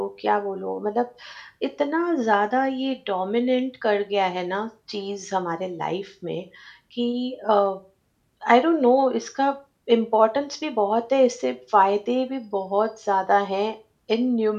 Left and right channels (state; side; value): identical; both; correlation 1.00